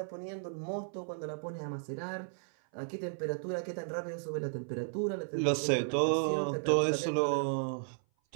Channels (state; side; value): silent; left; 55 dB below the other